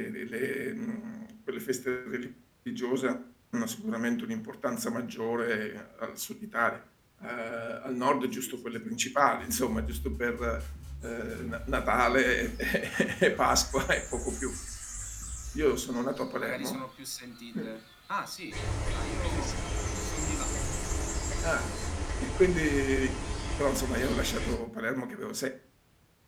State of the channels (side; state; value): both; identical; correlation 1.00